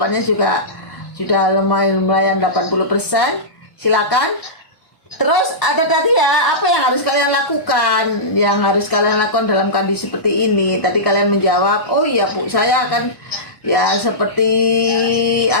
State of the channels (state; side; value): late; right; 1.1 ms